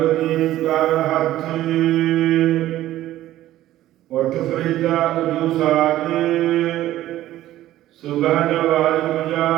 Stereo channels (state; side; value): quieter; left; 14.2 dB